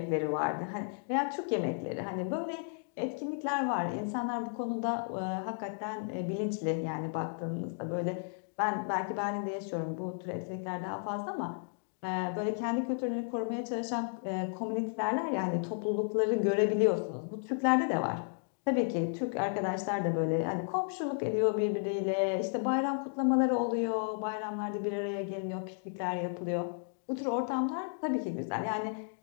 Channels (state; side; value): silent; right; digital silence